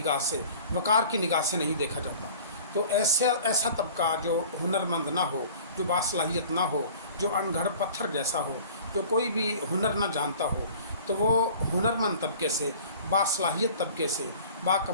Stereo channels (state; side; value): inverted; both; correlation -0.46